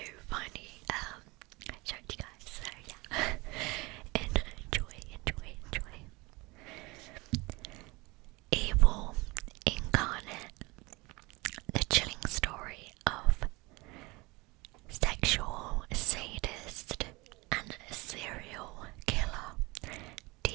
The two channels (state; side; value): quieter; left; 24.2 dB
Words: finally show it to you guys, so yeah, enjoy. Evil Incarnate, the chilling story of sexual sadist and serial killer